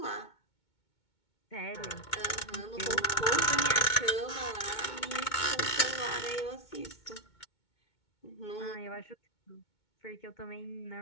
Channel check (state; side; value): late; right; 2.2 ms